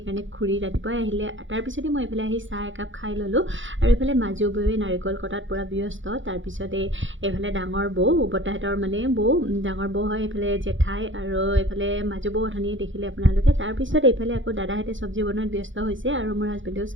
খুৰী ৰাতিপুৱাই আহিলে। তাৰপিছতে মই এইফালে আহি চাহ একাপ খাই ল'লোঁ। আৰু এইফালে মাজু বৌৱে নাৰিকল কটাত পূৰা ব্যস্ত। তাৰপিছতে এইফালে ডাঙৰ বৌ, বৰ্তাহঁতৰ মানে বৌ, ডাঙৰ বৌ হয়, এইফালে জেঠাই, আৰু এইফালে মাজু বৌ অথনিয়ে দেখিলে আপোনালোকে। তাৰপিছত এইফালে আকৌ দাদাহঁতে চব্জি বনোৱাত ব্যস্ত হৈছে, আৰু মোৰ হাজবেণ্ডেও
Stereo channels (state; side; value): late; left; 0.56 ms